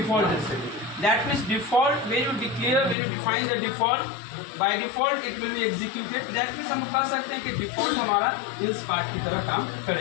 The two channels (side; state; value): right; drops out; at 3.0 s